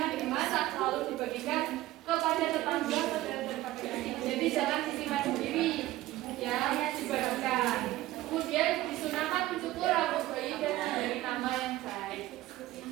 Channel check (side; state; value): left; quieter; 16.2 dB